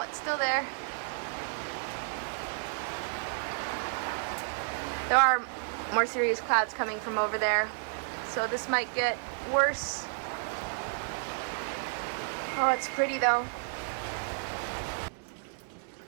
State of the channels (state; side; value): silent; left; 57 dB below the other